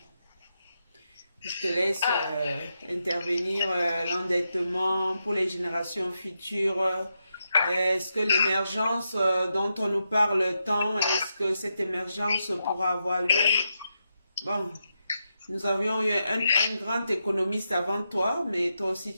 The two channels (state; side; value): inverted; both; correlation -0.86